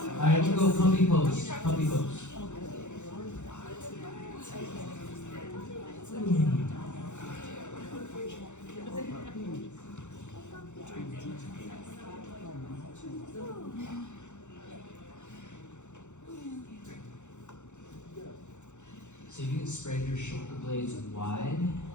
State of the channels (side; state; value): right; late; 0.84 ms